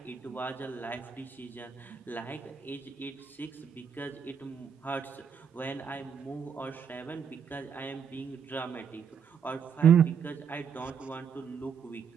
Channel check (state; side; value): quieter; left; 7.1 dB